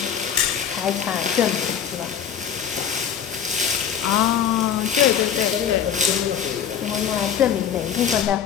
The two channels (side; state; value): right; quieter; 8.4 dB